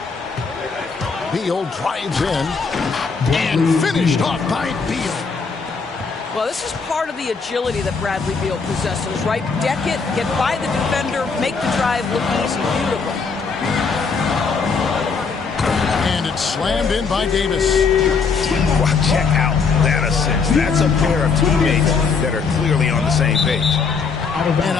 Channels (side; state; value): right; quieter; 5.1 dB